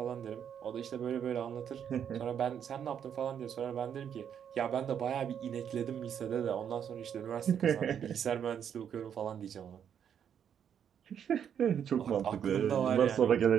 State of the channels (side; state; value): left; quieter; 8.5 dB